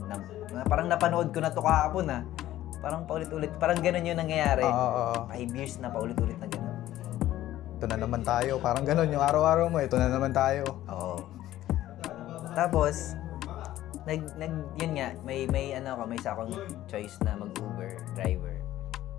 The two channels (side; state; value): right; quieter; 14.0 dB